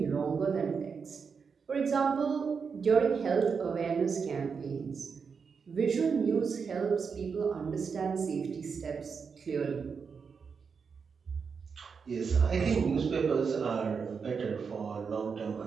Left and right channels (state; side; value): quieter; left; 5.8 dB